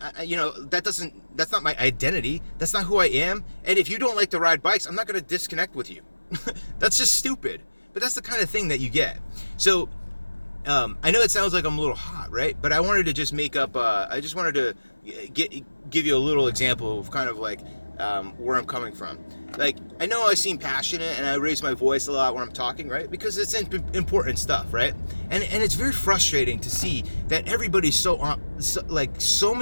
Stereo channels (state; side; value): inverted; both; correlation -1.00